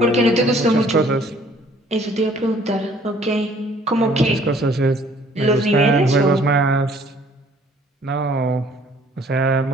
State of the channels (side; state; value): both; normal; correlation 0.58